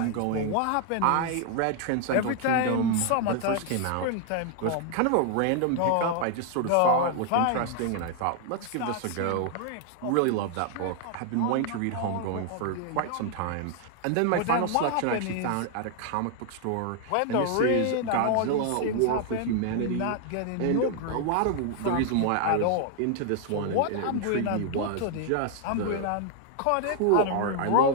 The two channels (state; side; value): different; both; correlation 0.00